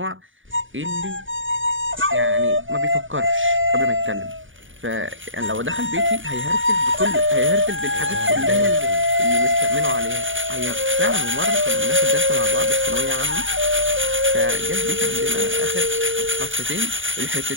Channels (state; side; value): late; left; 0.57 ms